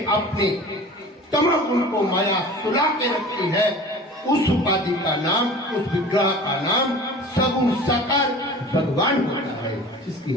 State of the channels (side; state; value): both; normal; correlation 0.40